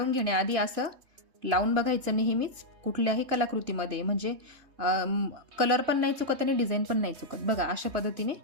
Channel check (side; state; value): left; late; 3.2 ms